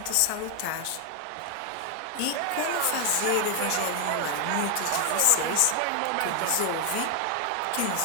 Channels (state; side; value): different; both; correlation 0.00